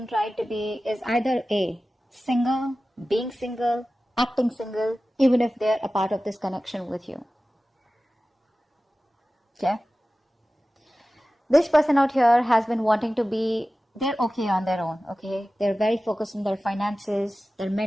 trying to be, is either A, single, being single, acting single, even if they're a part of this connection with you. Okay? This person out here has been wanting to be, they're okay on their own, okay? They're very focused on their finances, their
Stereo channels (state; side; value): normal; both; correlation 0.96